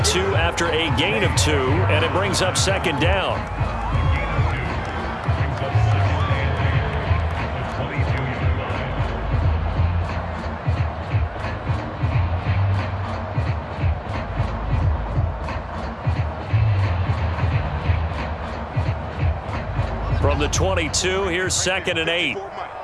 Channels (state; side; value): identical; both; correlation 1.00